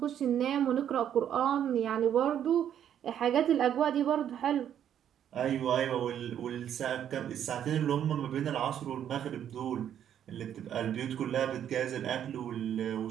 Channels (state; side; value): quieter; left; 9.8 dB